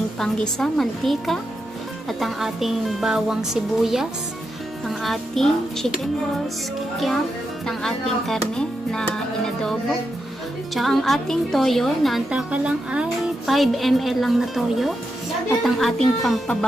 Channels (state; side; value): normal; both; correlation 0.86